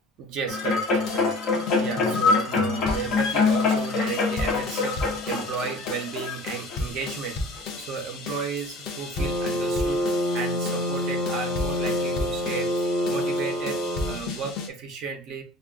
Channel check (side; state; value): both; normal; correlation 0.44